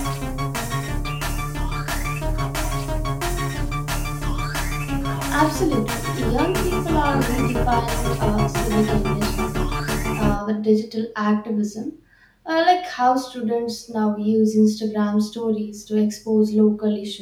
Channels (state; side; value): identical; both; correlation 1.00